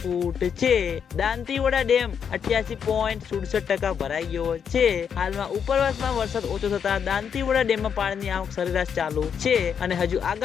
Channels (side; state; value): right; quieter; 7.4 dB